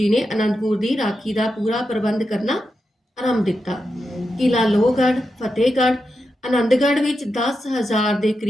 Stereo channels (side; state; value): both; normal; correlation 0.88